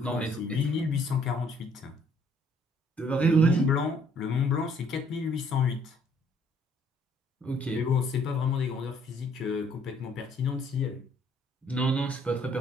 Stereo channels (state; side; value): normal; both; correlation 0.63